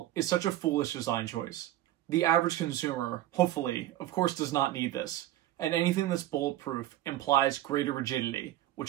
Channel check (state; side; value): quieter; left; 14.0 dB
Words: is such a foolish design choice. The average consumer, hopefully, of course does not need this. And anything that's bulletproof implies greater rigidity,